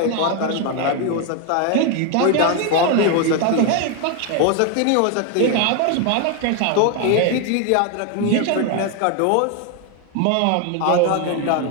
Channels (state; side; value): different; both; correlation 0.01